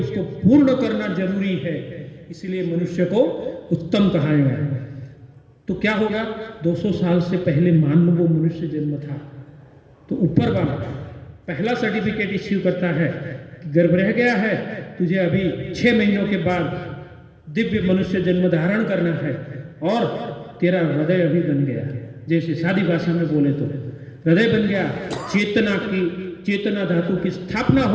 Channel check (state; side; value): identical; both; correlation 1.00